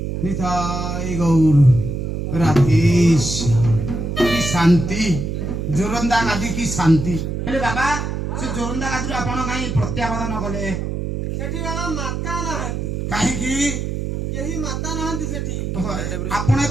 ନିତାଇ ଗୌର ରାଧେଶ କି ଶାନ୍ତି ଜୋରନ୍ଦା ଗାଦି କି ଶାନ୍ତି। ହେଲେ ବାବା ସେ ଜୋରନ୍ଦା ଗାଦିରୁ ଆପଣ କାହିଁ ପ୍ରତ୍ୟାବର୍ତ୍ତନ କଲେ? ସେଠି ବାବା ମାତା ନାହାନ୍ତି। କାହିଁକି? କେହି ମାତା ନାହାନ୍ତି ସେଠି। ଆପଣ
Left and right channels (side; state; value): right; noise; hum, 3 dB below the sound